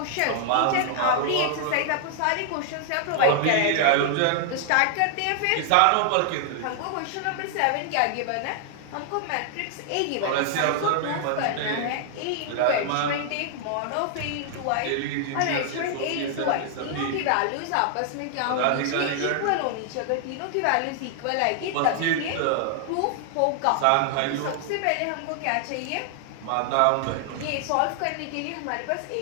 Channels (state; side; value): different; both; correlation 0.00